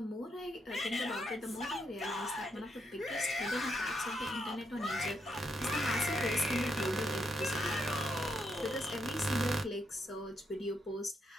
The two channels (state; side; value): normal; both; correlation 0.78